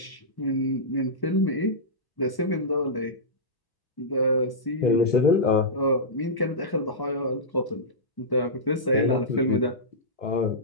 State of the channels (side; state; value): right; late; 1.0 ms